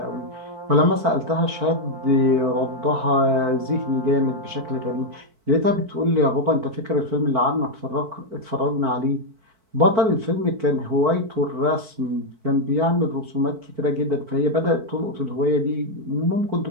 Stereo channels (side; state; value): left; late; 4.5 ms